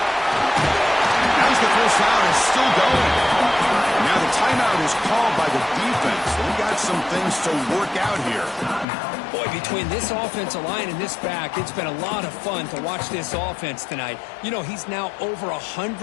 As the first down is still going. Now the timeout is called by the defense. They got some things to work out here. Boy, between this offensive line and this back, it's been a lot of fun to watch this offense tonight. You know, he's now over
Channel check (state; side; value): drops out; right; at 8.8 s